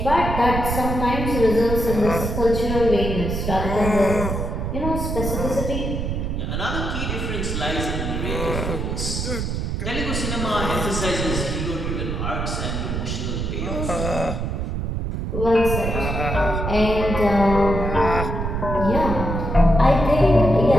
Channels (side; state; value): right; noise; rumble, 2 dB below the sound